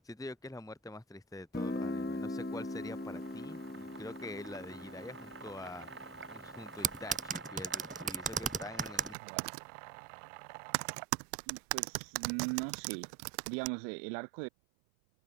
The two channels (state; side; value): drops out; left; at 9.2 s